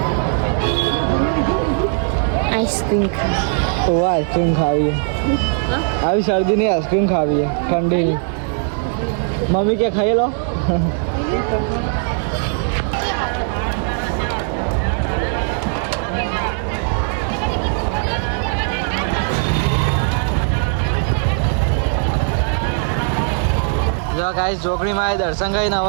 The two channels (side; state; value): left; silent; 57 dB below the other